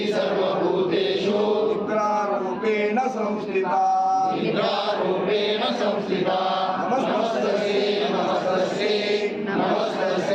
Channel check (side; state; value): both; identical; correlation 1.00